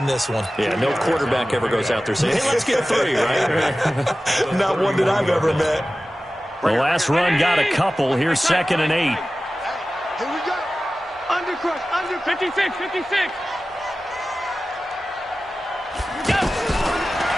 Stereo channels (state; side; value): normal; both; correlation 0.95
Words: this one. Yeah, no quarterback ever goes out there saying, hey, let's get 3, right? Not one that I've ever met. The last run got a couple. Here's 2nd and 8. Here we go. Under crush, under 56, 56.